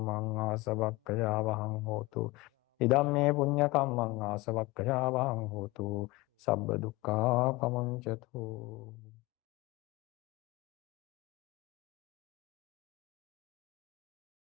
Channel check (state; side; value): quieter; right; 22.0 dB